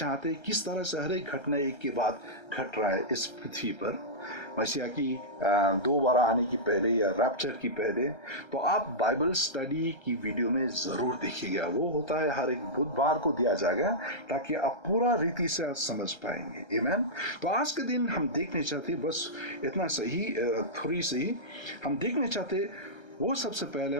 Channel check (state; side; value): late; right; 1.3 ms